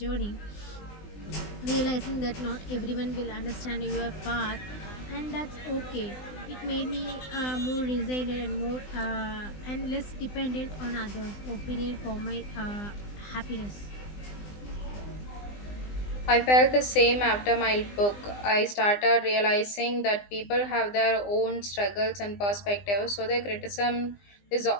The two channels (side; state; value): right; late; 20 ms